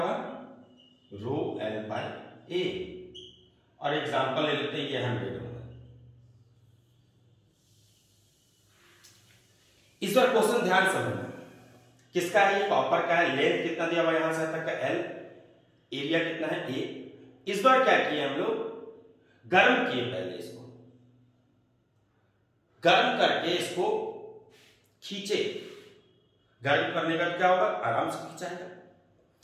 रो एल बाई ए। और एग्जांपल ले लेते हैं, ये 100 होगा। इस बार क्वेश्चन ध्यान से समझना, किसका है, ये कॉपर का है। लेंथ कितना दिया हुआ यहां से तक का एल, एरिया कितना है, ए। इस बार क्या किया हम लोग, गर्म किए पहले इसको, गर्म करके इसको खींचे। गर्म करने का क्या होगा, आराम से खींचाएगा।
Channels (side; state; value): both; identical; correlation 1.00